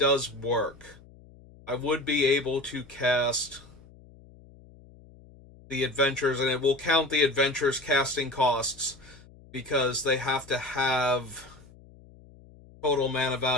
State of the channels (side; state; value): left; noise; hum, 23 dB below the sound